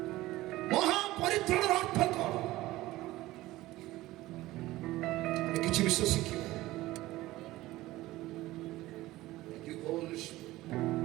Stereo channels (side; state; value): left; quieter; 17.4 dB